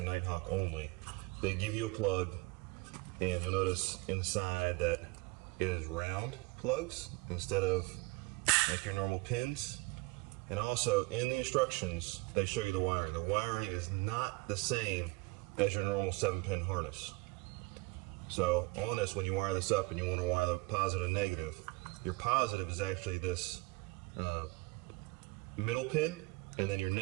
Nighthawk only, they give you a plug, and you'll notice inside that it is round plugs instead of like your normal pins. And also in the instructions they show you the wiring. The wiring is not the same as your normal 7-pin harness. So on this, when you wire this up and you want to wire the positive and negative, your positive is actually this middle pin, and then your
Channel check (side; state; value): left; quieter; 25.2 dB